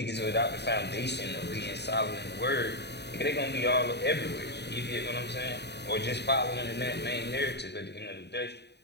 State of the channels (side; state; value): right; late; 0.49 ms